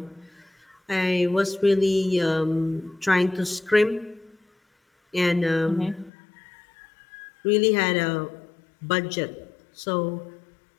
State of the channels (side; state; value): right; drops out; at 6.1 s